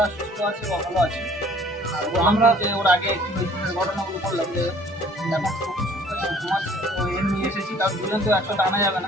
সুস্থ আছে বা ভালো আছে। আমরা যে ওর আগে কি হয়েছিল ঘটনাগুলো করলাম যে এখন ঘুমাচ্ছে। তো এমনি এসেছি, তার দুজন তো একসাথে আনা যাবে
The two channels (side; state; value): both; normal; correlation 0.55